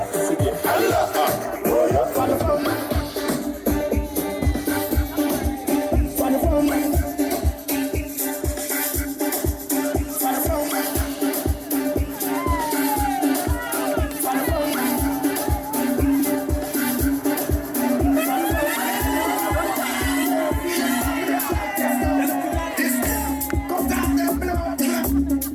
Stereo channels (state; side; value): identical; both; correlation 1.00